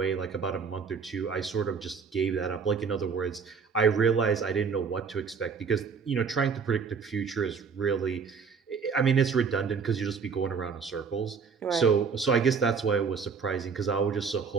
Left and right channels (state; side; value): quieter; left; 5.7 dB